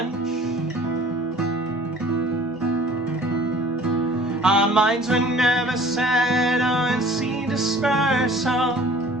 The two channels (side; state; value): both; normal; correlation 0.49